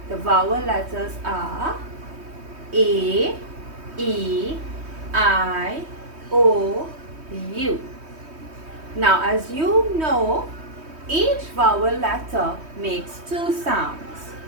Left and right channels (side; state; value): left; late; 3.2 ms